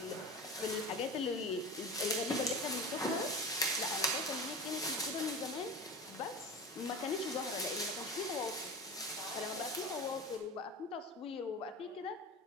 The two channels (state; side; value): normal; both; correlation 0.30